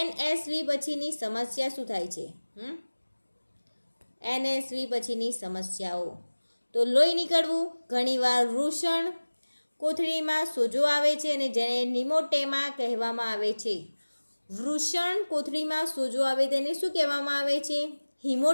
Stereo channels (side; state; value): both; inverted; correlation -1.00